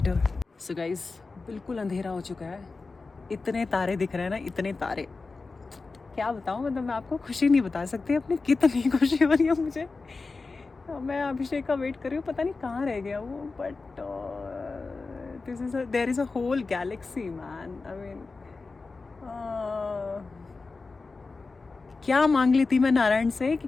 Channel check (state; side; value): quieter; right; 4.0 dB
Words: So guys, बिल्कुल अंधेरा हो चुका है. इतने तारे दिख रहे हैं ना, इतने तारे. क्या बताऊँ, मतलब मैं आपको खुशी नहीं बता सकती अपनी कितनी खुशी हो रही है मुझे. मैं अभिषेक का वेट कर रही हूँ. पता नहीं कहाँ रह गया वो but there is a whole galaxy man. I mean क्या मांग ली थी मैं नारायण से कि